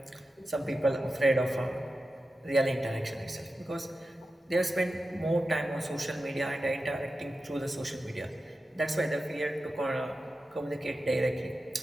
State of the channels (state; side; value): normal; both; correlation 0.92